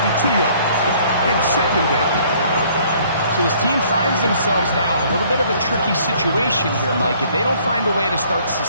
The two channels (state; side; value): inverted; both; correlation -0.59